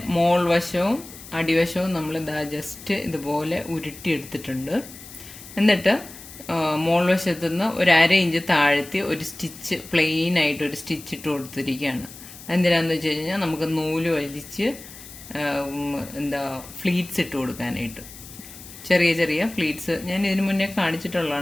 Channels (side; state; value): left; noise; hiss, 16 dB below the sound